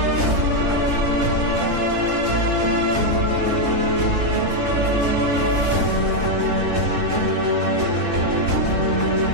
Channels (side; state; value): left; late; 3.7 ms